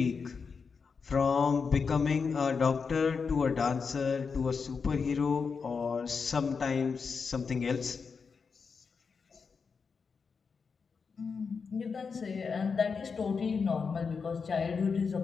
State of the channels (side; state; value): right; quieter; 5.4 dB